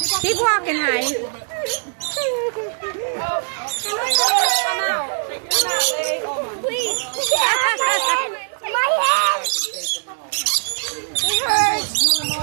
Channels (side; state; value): left; silent; digital silence